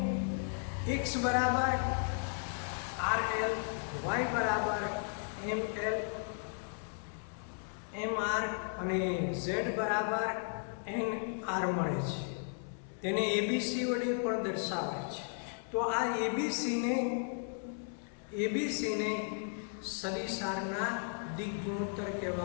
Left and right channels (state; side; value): silent; right; 54 dB below the other